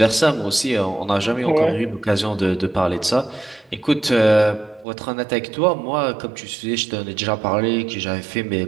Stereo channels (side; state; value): left; drops out; at 4.9 s